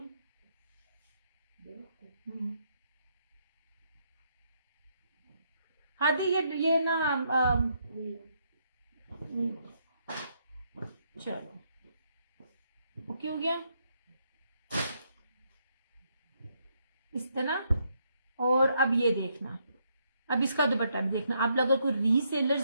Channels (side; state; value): both; inverted; correlation -0.75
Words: हादी ये ना चलो ओके हो गया इस तरह। और अब ये देखना, अब इसका दुपट्टा भी देखना। आप अगर कोई